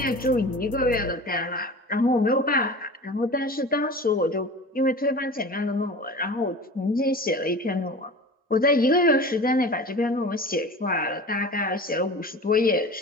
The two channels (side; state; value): both; normal; correlation 0.36